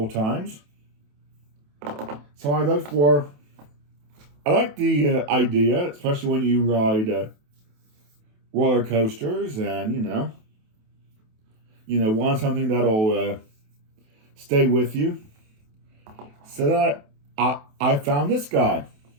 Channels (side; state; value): left; late; 28 ms